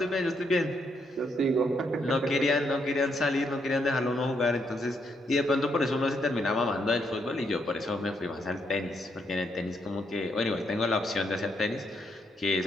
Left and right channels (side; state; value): both; normal; correlation 0.76